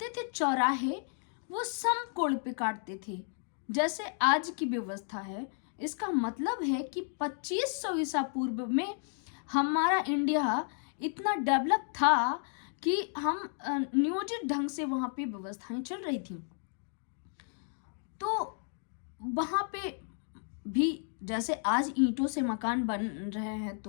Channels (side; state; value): right; silent; 56 dB below the other